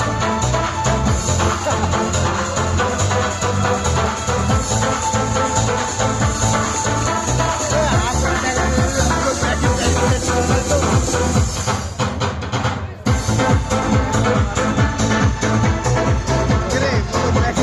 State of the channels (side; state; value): both; identical; correlation 1.00